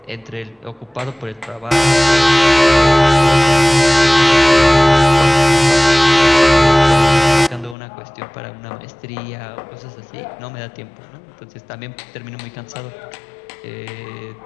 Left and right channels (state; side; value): drops out; right; at 7.8 s